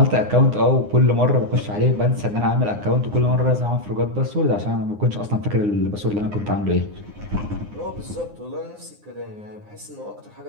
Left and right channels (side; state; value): left; late; 9.7 ms